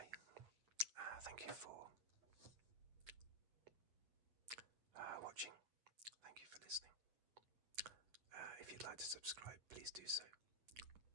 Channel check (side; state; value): left; late; 8.9 ms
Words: thank you for watching. Thank you for listening. If you'd like to subscribe, please do so.